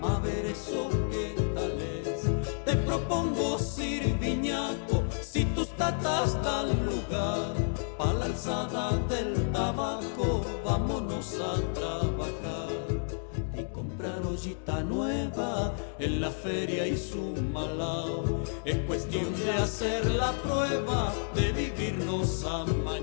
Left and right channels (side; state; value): right; silent; digital silence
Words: a ver eso que tal es. Te propongo sirviñaco, si tus tatas dan lugar, pa' la alzada del tabaco, vámonos a trabajar. Y comprar ollita nueva en la feria y su malao. Es cuestión de hacer la prueba de vivirnos